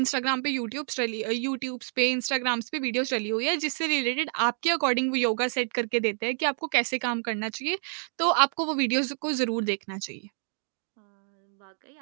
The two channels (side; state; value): left; silent; 59 dB below the other